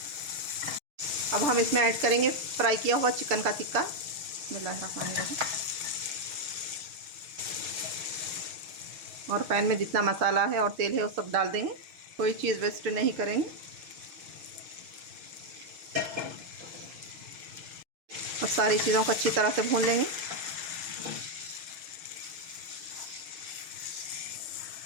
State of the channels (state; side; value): late; left; 6.8 ms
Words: अब हम इसमें ऐड करेंगे फ्राई किया हुआ चिकन का टिक्का। बिस्मिल्लाहिर्रहमानिर्रहीम। और पैन में जितना मसाला है और तेल है वो सब डाल देंगे। कोई चीज़ वेस्ट नहीं करेंगे। और सारी चीज़ों को अच्छी तरह से भून लेंगे।